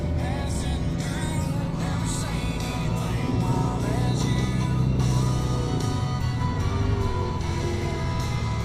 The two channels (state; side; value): identical; both; correlation 1.00